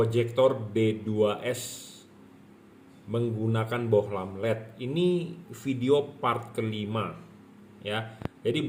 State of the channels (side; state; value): both; identical; correlation 1.00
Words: D2S menggunakan bohlam LED. Ini video part kelima ya. Jadi